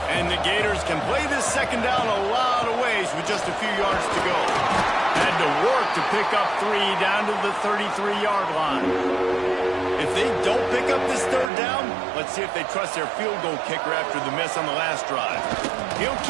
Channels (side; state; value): left; drops out; at 11.5 s